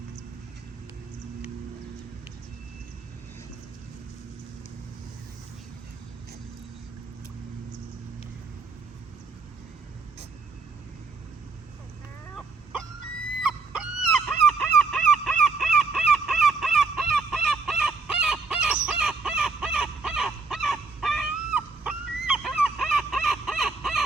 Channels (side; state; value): left; quieter; 4.1 dB